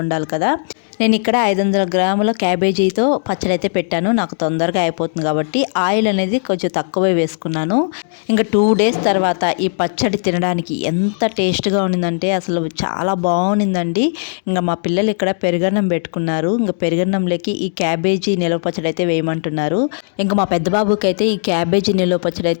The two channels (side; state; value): right; silent; digital silence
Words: ఉండాలి కదా. నేను ఇక్కడ 500 గ్రాముల క్యాబేజీతో పచ్చడి అయితే పెట్టాను, నాకు తొందరగా అయిపోతుంది కాబట్టి ఆయిల్ అనేది కొంచెం తక్కువే వేసుకున్నాను. ఇంకా 2 డేస్ తర్వాత ఈ పచ్చడి తినడానికి ఎంత టేస్ట్గా ఉండిందంటే అసలు చాలా బాగుండిందండి. ఇంకా మా పిల్లలు ఇక్కడ పెరుగన్నం పెట్టుకున్నారు, ఇంకా పెరుగన్నంలోకి ఈ క్యాబేజీ నిలవ పచ్చడి అయితే వేయమంటున్నారు. ఇంకా మా పెద్ద బాబుకి అయితే ఈ క్యాబేజీ నిలవ పచ్చడి